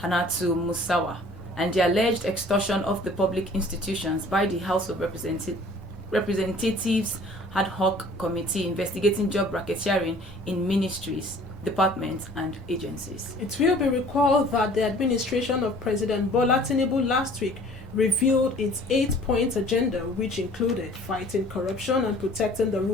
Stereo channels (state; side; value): normal; both; correlation 0.51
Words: Musawa, and the alleged extortion of the public institutions by the House of Representatives ad hoc committee investigating job racketeering in ministries, departments and agencies. It will be recalled that the administration of President Bola Tinubu last week revealed its 8-point agenda, which included fighting corruption and protecting the